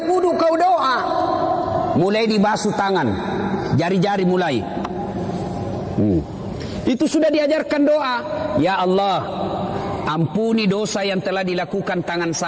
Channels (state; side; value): identical; both; correlation 1.00